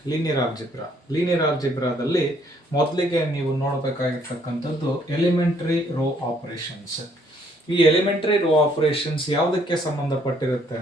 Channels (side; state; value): both; normal; correlation 0.66